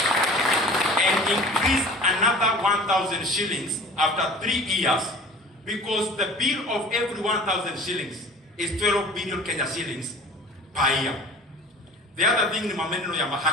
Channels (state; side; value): normal; both; correlation 0.43